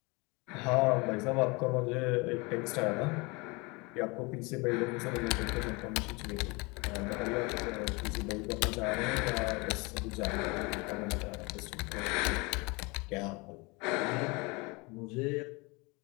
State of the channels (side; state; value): right; quieter; 27.1 dB